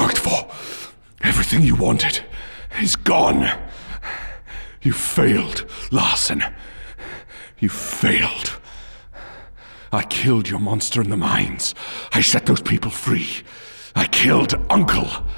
for, everything you wanted, is gone. You failed, Larson. You failed. I killed your monster in the mines. I set those people free. I killed Uncle.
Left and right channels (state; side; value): inverted; both; correlation -1.00